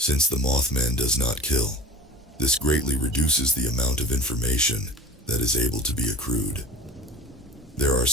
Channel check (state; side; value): normal; both; correlation 0.36